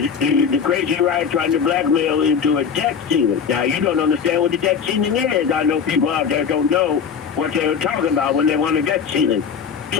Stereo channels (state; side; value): quieter; right; 6.8 dB